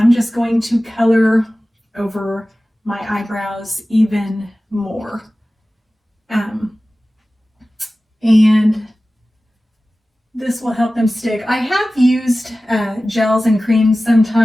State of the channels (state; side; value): normal; both; correlation 0.96